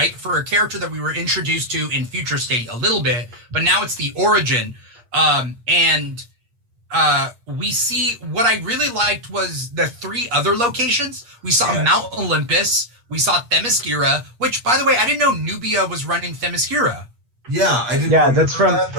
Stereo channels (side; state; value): left; late; 8.5 ms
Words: For a character that we were introduced to in Future State a little bit, but now it's the origin. We see, what I really liked was the 3 other locations. We saw Mount Olympus, we saw Themyscira, which, by the way, I didn't know Nubia was running Themyscira. Yeah, I didn't. Yeah, that's from that,